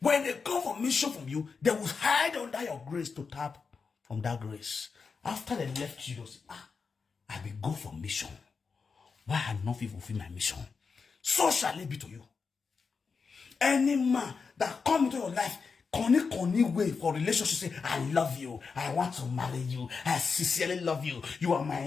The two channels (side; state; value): right; quieter; 5.2 dB